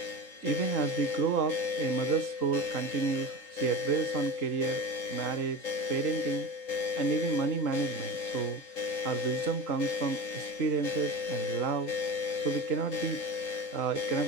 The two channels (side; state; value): right; late; 3.8 ms